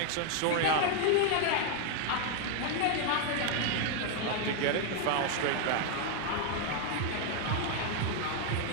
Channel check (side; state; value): both; different; correlation 0.01